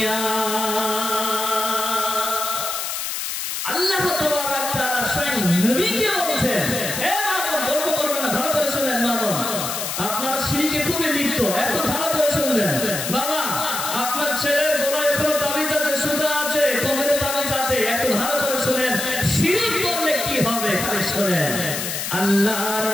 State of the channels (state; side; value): noise; left; hiss, 4 dB below the sound